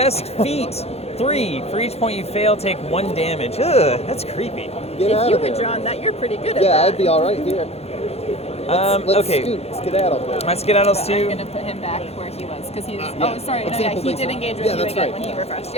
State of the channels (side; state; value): right; late; 0.30 ms